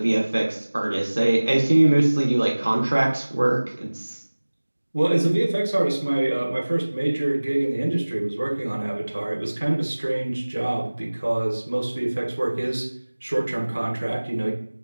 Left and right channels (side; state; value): both; inverted; correlation -1.00